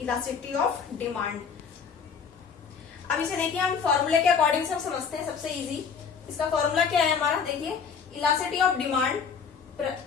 ऑफ डिमांड। अब इसे देखिए, हम फॉर्मूले के अकॉर्डिंग सब समझते हैं। सबसे इजी इसका फॉर्मूला क्या है हमारा, देखिए elasticity of demand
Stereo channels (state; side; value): quieter; right; 6.3 dB